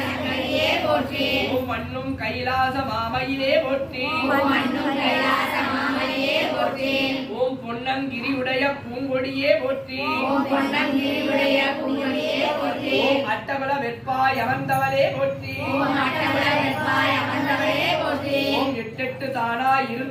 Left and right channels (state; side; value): identical; both; correlation 1.00